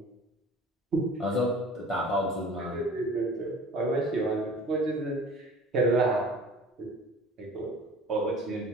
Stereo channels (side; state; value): both; normal; correlation 0.45